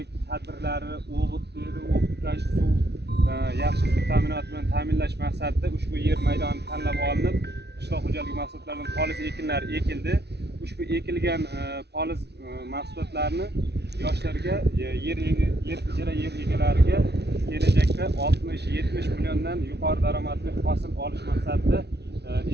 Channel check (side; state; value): left; late; 0.49 ms